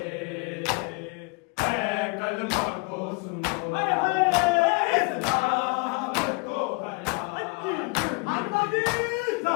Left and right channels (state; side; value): quieter; right; 28.5 dB